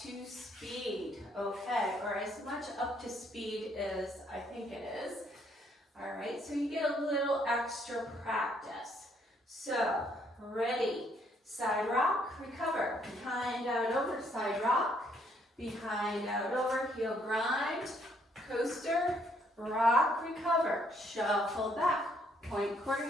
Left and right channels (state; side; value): normal; both; correlation 0.69